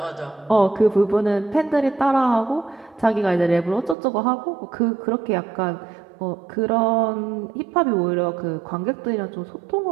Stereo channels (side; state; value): left; drops out; at 4.0 s